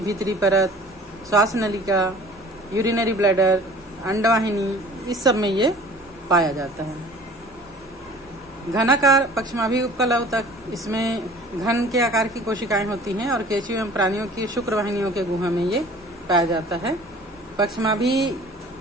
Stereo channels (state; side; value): normal; both; correlation 0.47